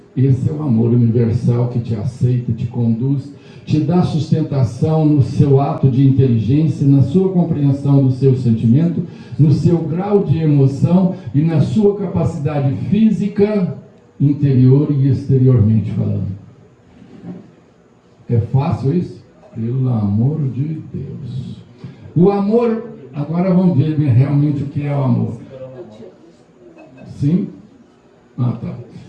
Esse é o amor universal que te aceita, te conduz, te dá sustentação no seu ato de inteligência, na sua compreensão do seu sentimento, no seu grau de emoção e na sua capacidade física, interior e exteriormente falando. É fácil isso? Pelo amor de Deus. O amor, agora vamos ver realmente o que é o amor. Sim? Ah, tá.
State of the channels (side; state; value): both; identical; correlation 1.00